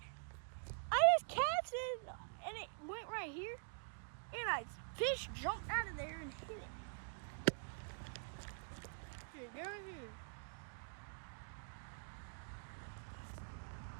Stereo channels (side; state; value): left; silent; digital silence